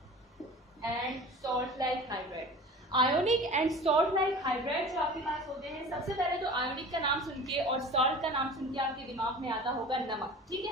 and salt like hydride, ionic and salt like hydride जो आपके पास होते हैं, सबसे पहले तो ionic का नाम सुन के और salt का नाम सुन के आपके दिमाग में आता होगा नमक, ठीक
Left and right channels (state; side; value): normal; both; correlation 0.39